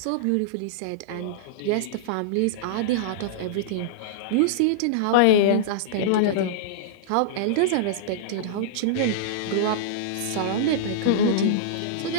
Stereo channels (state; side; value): different; both; correlation -0.02